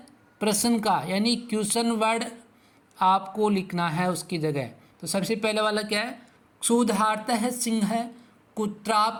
प्रश्न का, यानी क्वेश्चन वर्ड आपको लिखना है उसकी जगह। तो सबसे पहले वाला क्या है, क्षुधार्तः सिंह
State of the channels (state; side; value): identical; both; correlation 1.00